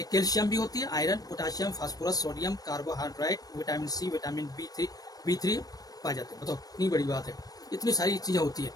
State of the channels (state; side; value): late; right; 0.18 ms